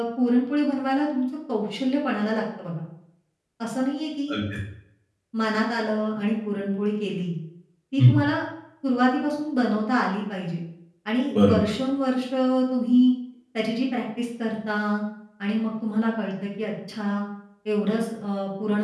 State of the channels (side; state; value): both; identical; correlation 1.00